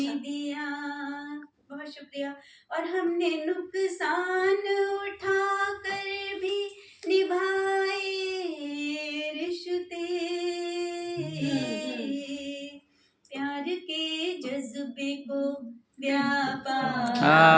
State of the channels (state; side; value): identical; both; correlation 1.00